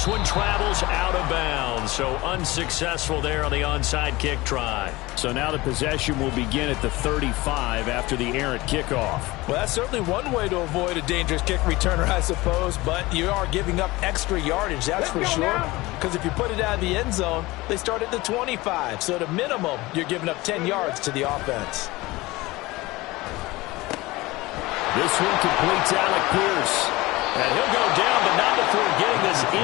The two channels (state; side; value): quieter; right; 20.6 dB